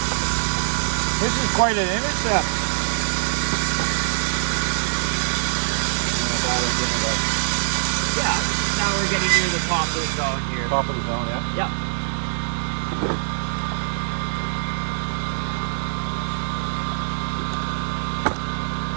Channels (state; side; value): silent; left; 56 dB below the other